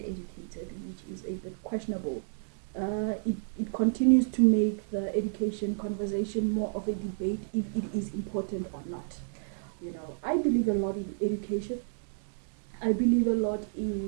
educated, which is a bit questionable. It continues to make the education conversation more of a debate if it is important or not. I believe a lot in education. I believe a lot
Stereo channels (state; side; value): silent; left; digital silence